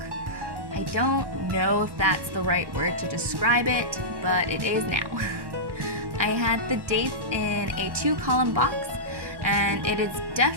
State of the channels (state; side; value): late; left; 1.1 ms